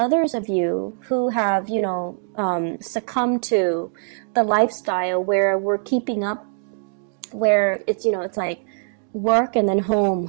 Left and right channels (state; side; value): silent; left; digital silence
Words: of you who have, succumbed to the lifestyle where we're keeping up, where it's like work and then